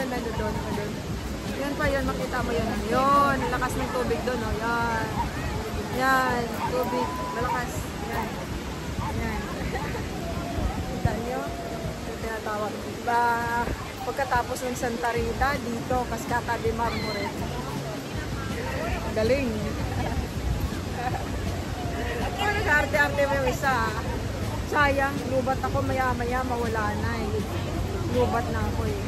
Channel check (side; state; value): both; identical; correlation 1.00